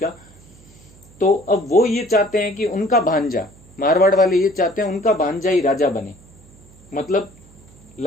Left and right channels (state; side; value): noise; right; hum, 25 dB below the sound